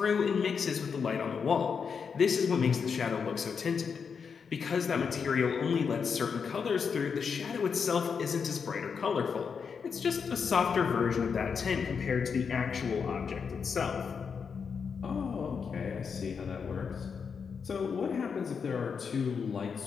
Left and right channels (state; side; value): quieter; right; 6.1 dB